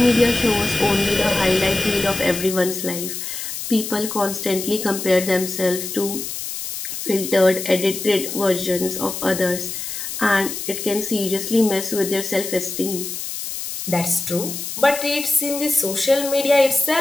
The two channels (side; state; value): left; noise; hiss, 6 dB below the sound